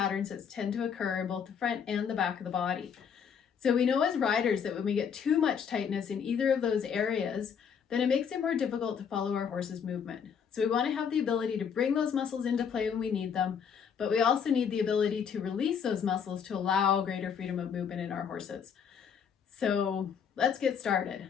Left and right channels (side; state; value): right; quieter; 7.1 dB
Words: that tend to occur in both the front and the back of the body. So we know as riders that when we get too much tightness in either of those areas, then it makes it more difficult to follow our horse's movement. So we want to have the ability to bring those muscles into play when we need them, but we also need the ability to release those muscles to allow greater freedom of movement in our horses. So let's get started.